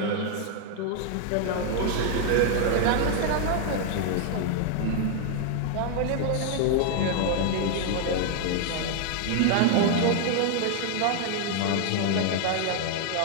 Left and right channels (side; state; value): both; different; correlation 0.00